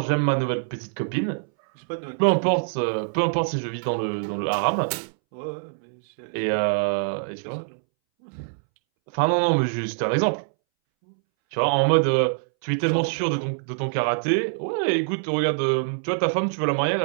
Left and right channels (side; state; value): left; silent; 62 dB below the other